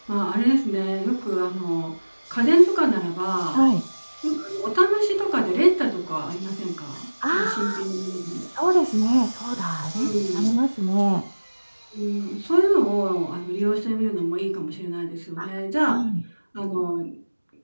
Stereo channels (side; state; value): both; inverted; correlation -1.00